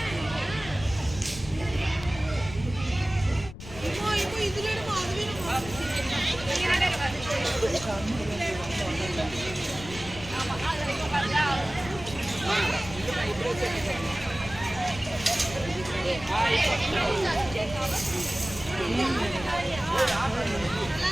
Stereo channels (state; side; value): noise; left; rumble, 13 dB below the sound